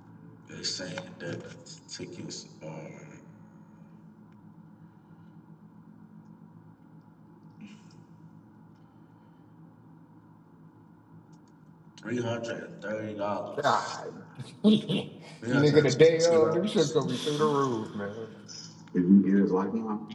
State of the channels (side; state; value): both; identical; correlation 1.00